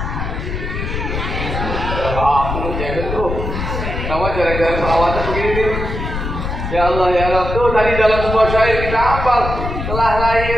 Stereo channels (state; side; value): noise; left; rumble, 4 dB below the sound